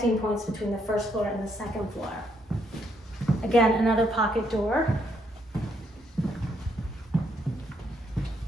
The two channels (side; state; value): both; normal; correlation 0.73